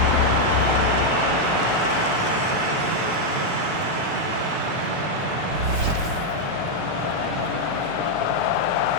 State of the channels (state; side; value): late; left; 4.9 ms